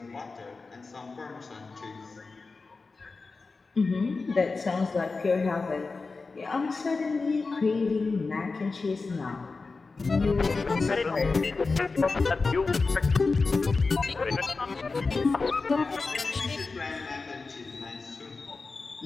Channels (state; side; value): quieter; right; 4.0 dB